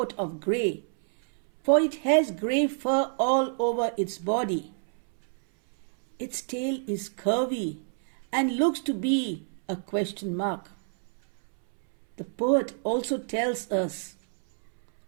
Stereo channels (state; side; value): silent; left; 60 dB below the other